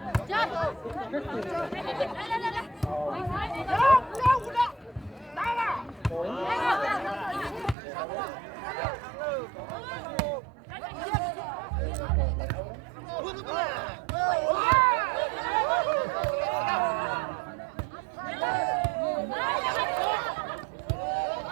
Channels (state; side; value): drops out; left; at 7.8 s